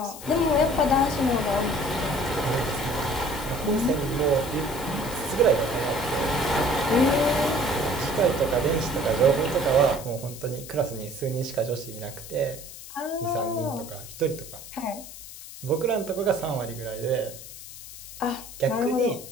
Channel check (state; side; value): noise; left; hiss, 14 dB below the sound